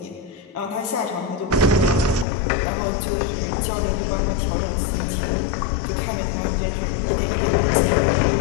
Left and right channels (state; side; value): drops out; right; at 2.2 s